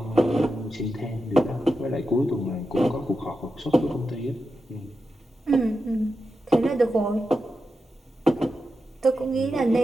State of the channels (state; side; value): normal; both; correlation 0.89